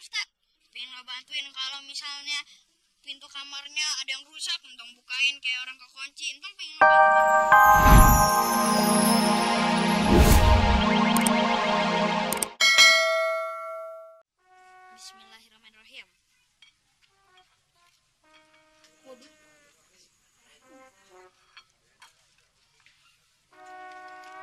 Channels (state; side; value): identical; both; correlation 1.00